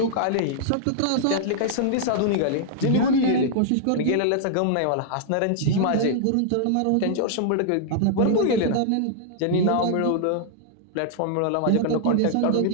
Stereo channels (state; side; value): different; both; correlation -0.01